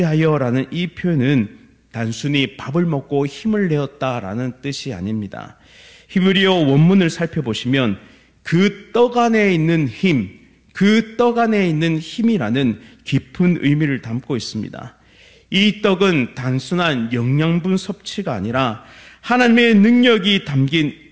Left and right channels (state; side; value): identical; both; correlation 1.00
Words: 이 표현은 단순히 밥을 먹고 힘을 내었다라는 뜻이 아닙니다. 히브리어 원문을 살펴보시면 그 떡 안에 있는 힘, 그 떡 안에 있는 힘이라는 깊은 의미를 담고 있습니다. 이 떡은 단순한 영양분 섭취가 아니라 하나님의 능력이 담긴